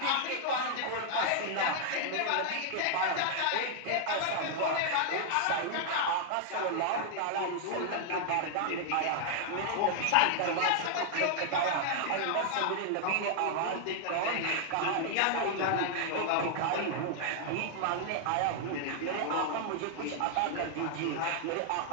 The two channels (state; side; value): different; both; correlation -0.01